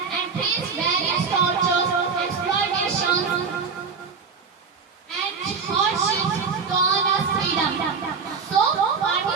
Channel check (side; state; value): left; quieter; 5.4 dB